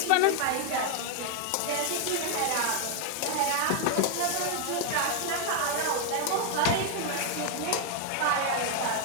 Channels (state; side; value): different; both; correlation 0.00